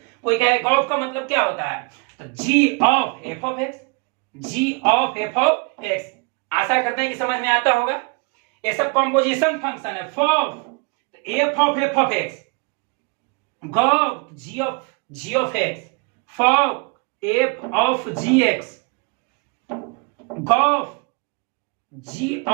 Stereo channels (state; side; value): quieter; left; 32.0 dB